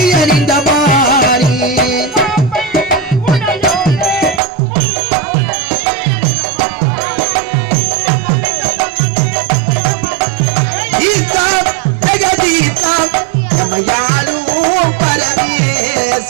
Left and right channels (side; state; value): left; drops out; at 4.4 s